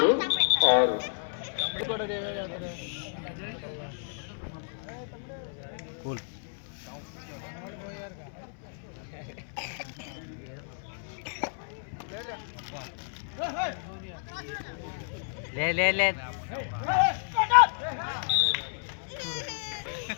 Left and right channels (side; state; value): right; silent; 57 dB below the other